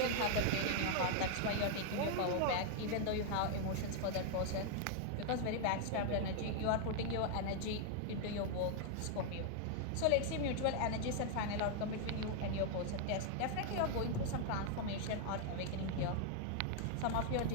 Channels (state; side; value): different; both; correlation 0.00